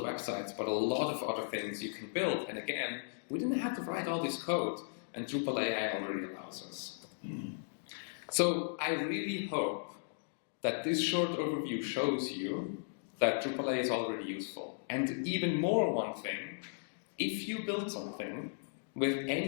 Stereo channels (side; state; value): right; silent; digital silence